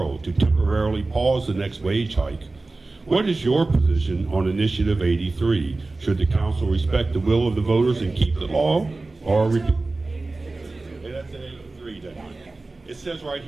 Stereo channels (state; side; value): quieter; left; 3.3 dB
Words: to temporarily pause the next wage hike. What is your position on Initiative 83? Should the council respect the will of the voters and keep the law, or repeal? Hey, that's 83, doesn't it? It says right